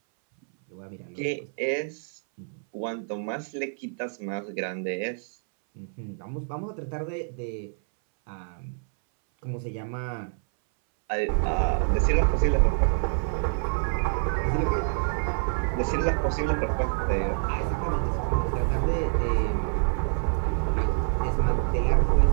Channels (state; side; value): silent; left; 60 dB below the other